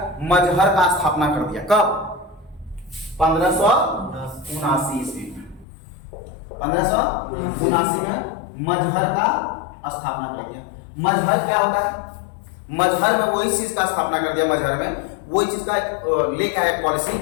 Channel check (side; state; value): right; drops out; at 5.7 s